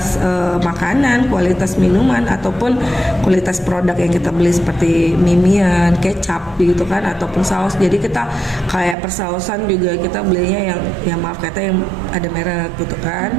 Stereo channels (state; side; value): drops out; left; at 9.0 s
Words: makanan, kualitas minuman ataupun kualitas produk yang kita beli seperti mimian, kecap gitu kan, ataupun saus. Jadi kita kayak persausan juga kita belinya yang maaf kata yang ada merek gitu kan.